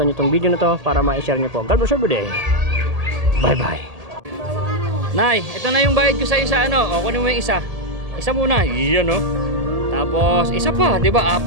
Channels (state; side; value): late; left; 1.8 ms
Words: nyo itong video na to para ma-share nyo po. God bless every day. Bye bye. Nay, ito na yung bayad ko sa isa ano. O kunin mo yung isa. Isa muna. Iyan o. Tapos isa pa, 'di ba?